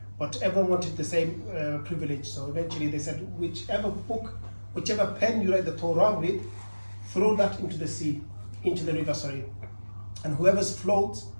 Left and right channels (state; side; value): inverted; both; correlation -1.00